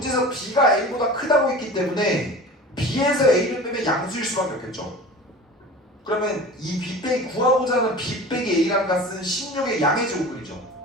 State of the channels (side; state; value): both; normal; correlation 0.37